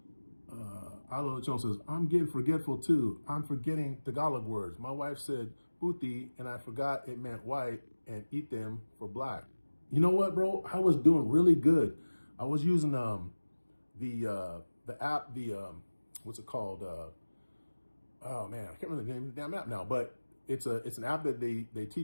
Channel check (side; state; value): both; inverted; correlation -1.00